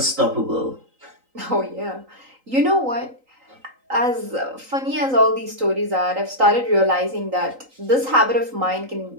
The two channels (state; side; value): late; left; 3.9 ms